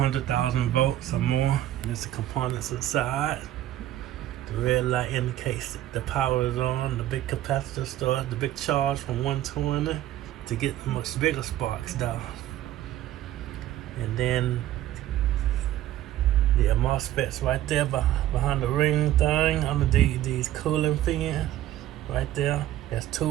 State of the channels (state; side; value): quieter; left; 13.3 dB